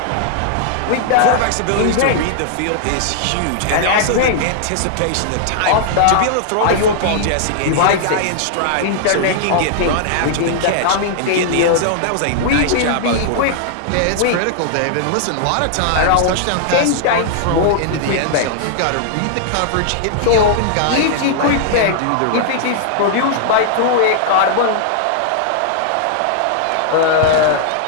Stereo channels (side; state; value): both; different; correlation -0.01